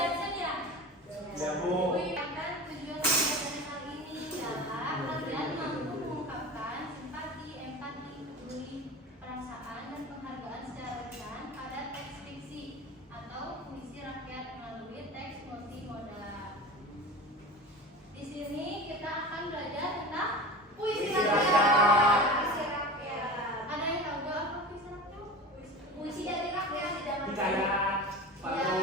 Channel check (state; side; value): normal; both; correlation 0.32